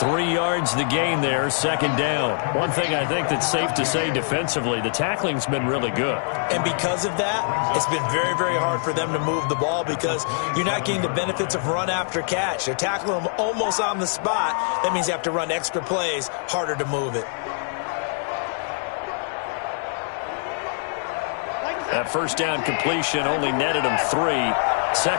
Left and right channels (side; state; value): right; silent; digital silence